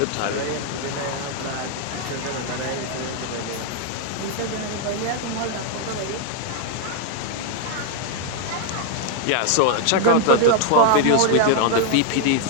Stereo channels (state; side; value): different; both; correlation 0.00